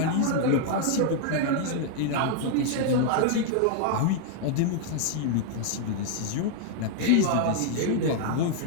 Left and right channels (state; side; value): different; both; correlation 0.00